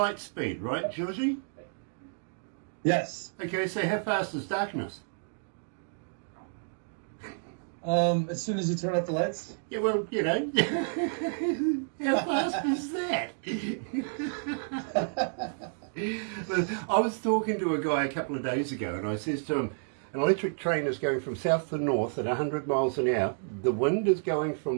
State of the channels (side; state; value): left; silent; digital silence